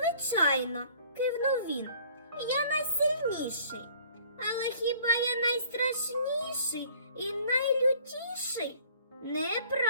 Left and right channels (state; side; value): inverted; both; correlation -0.55